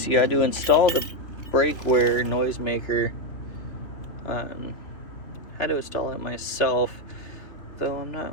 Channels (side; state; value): right; late; 3.3 ms